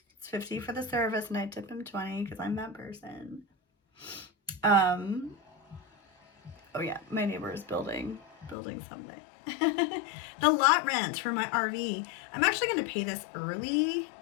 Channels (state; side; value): drops out; right; at 8.6 s